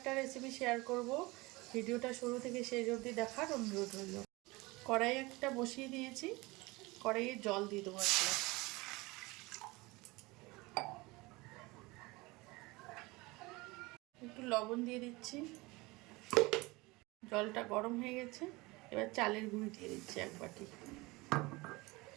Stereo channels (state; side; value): quieter; left; 23.0 dB